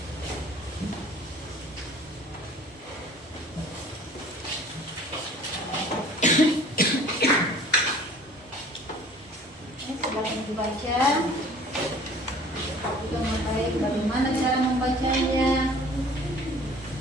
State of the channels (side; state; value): both; normal; correlation 0.49